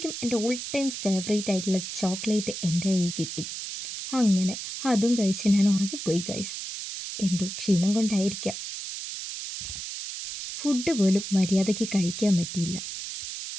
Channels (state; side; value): noise; right; hiss, 7 dB below the sound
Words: എൻ്റെ ഓൾ ടൈം ഫേവറേറ്റ് ആയിട്ടുള്ള ചോക്ലേറ്റ് എൻ്റെ കയ്യിൽ കിട്ടി. അങ്ങനെ അതും കഴിച്ച് ഞാൻ ഉറങ്ങിപ്പോയി ഗൈസ്. എന്തോ ക്ഷീണം കൊണ്ടായിരിക്കാം. ഫുഡ് പോലും മര്യാദയ്ക്ക് കഴിക്കാൻ പറ്റിയില്ല.